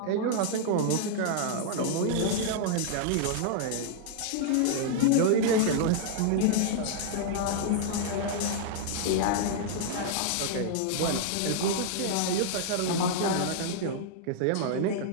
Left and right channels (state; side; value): different; both; correlation -0.01